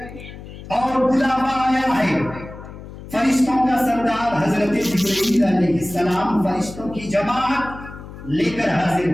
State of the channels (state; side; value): noise; left; hum, 14 dB below the sound